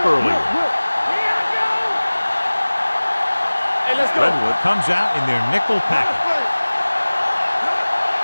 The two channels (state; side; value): inverted; both; correlation -1.00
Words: earlier. Redwood comes out in their nickel package.